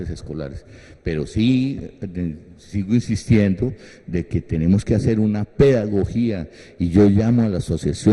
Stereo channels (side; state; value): both; identical; correlation 1.00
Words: escolares, pero sí sigo insistiendo de que tenemos que hacer una pedagogía y yo llamo a las